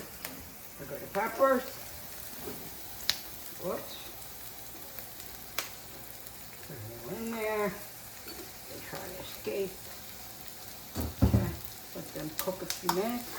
We're going to peppers. Whoops. Put them in there. They try to escape. Okay. Let them cook a few minutes.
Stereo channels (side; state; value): both; identical; correlation 1.00